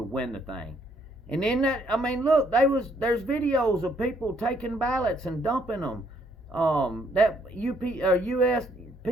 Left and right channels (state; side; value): normal; both; correlation 0.68